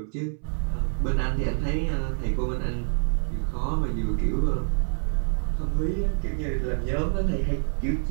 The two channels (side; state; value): left; silent; 61 dB below the other